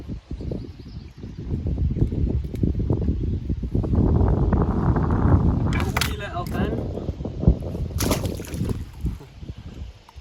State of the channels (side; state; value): both; identical; correlation 1.00